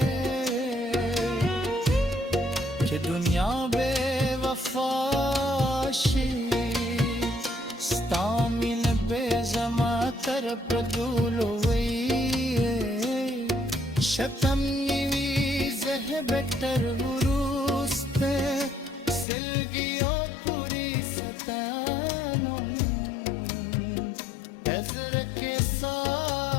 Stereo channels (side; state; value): right; drops out; at 19.2 s